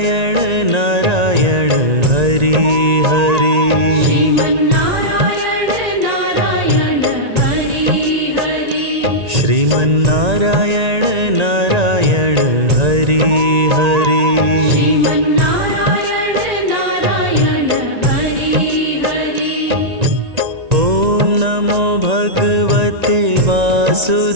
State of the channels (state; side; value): late; left; 1.9 ms